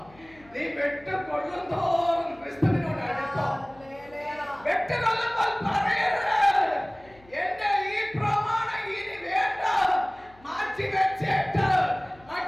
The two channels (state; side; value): noise; left; hum, 27 dB below the sound